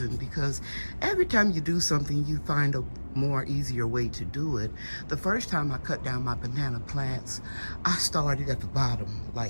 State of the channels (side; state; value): both; inverted; correlation -1.00